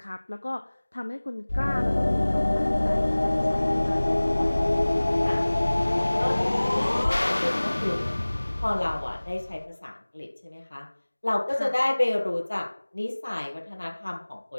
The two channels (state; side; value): inverted; both; correlation -1.00